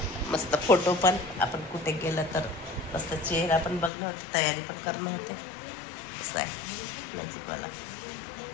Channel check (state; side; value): drops out; right; at 3.9 s